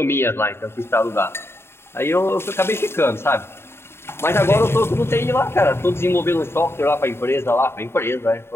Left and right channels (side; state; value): right; late; 0.12 ms